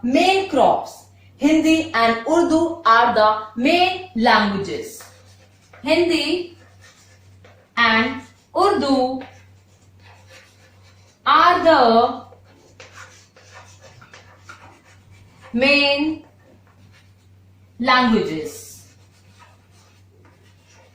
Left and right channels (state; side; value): identical; both; correlation 1.00